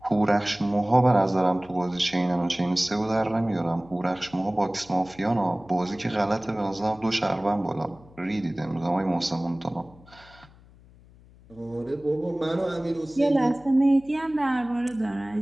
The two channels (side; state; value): left; noise; hum, 25 dB below the sound